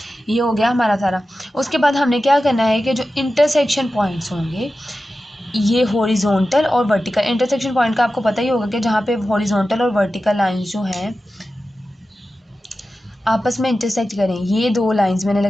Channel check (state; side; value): normal; both; correlation 0.93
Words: ये हो गया हमारा सारा। उसके बाद हमने क्या करना है कि जो इंटरसेक्शन पॉइंट्स होंगे, ये हॉरिजॉन्टल और वर्टिकल, इंटरसेक्शन पॉइंट का आपको पता ही होगा कि जहाँ पे हॉरिजॉन्टल और वर्टिकल लाइंस जो हैं आपस में इंटरसेक्ट करें। ये दो लाइंस मैंने